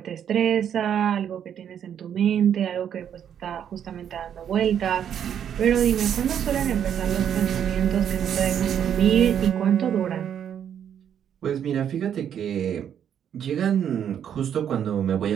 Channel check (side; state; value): left; quieter; 9.0 dB